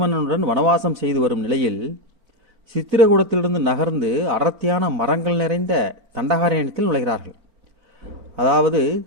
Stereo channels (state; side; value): late; left; 4.4 ms